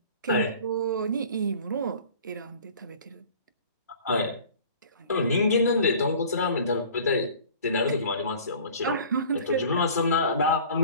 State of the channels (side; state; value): both; inverted; correlation -0.46